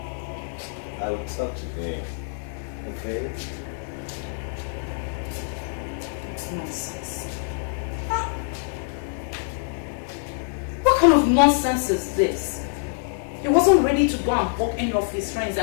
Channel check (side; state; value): right; silent; digital silence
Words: I will talk to him. Okay? this nonsense? Huh? What kind of nonsense is this? He wasn't ready to go and walk any of his friends